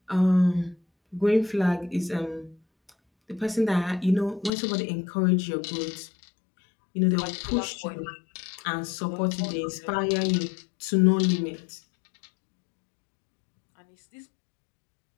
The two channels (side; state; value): right; drops out; at 4.5 s